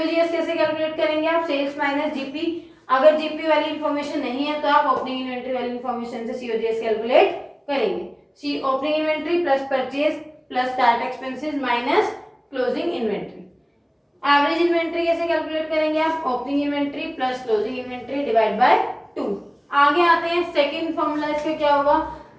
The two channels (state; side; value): identical; both; correlation 1.00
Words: कैसे कैलकुलेट करेंगे आप, सेल्स माइनस GP। अगर जीपी वाली इंफॉर्मेशन नहीं है तो आप ओपनिंग इन्वेंट्री वाली इंफॉर्मेशन से सीओजीएस कैलकुलेट करेंगे। See opening inventory plus purchase plus start expenses minus closing inventory. Average inventory कैसे कैलकुलेट करेंगे आप? Opening inventory plus closing inventory divide by 2। आगे आते हैं, सेकंड फॉर्मूला इसका क्या होगा?